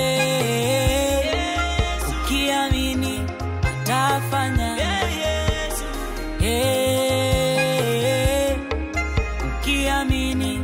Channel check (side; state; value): both; identical; correlation 1.00